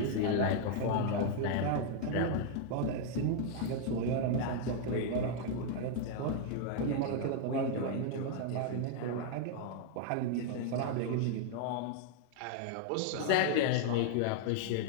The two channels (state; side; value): different; both; correlation 0.00